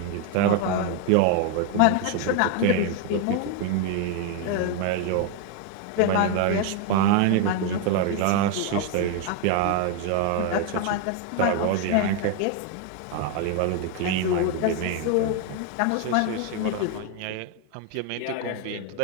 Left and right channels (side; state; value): both; different; correlation 0.01